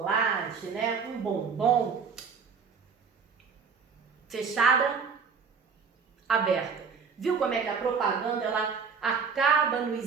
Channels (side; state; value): left; quieter; 5.7 dB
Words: né? Um bombom, fechada, aberta. Viu como é que a propaganda, ela acaba